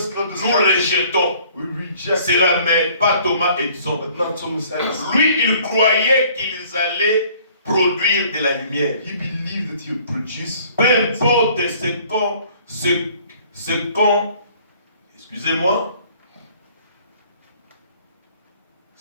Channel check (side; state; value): both; inverted; correlation -0.56